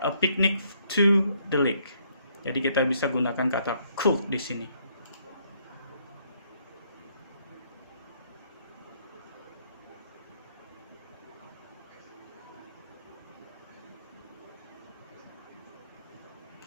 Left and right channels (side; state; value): both; inverted; correlation -0.69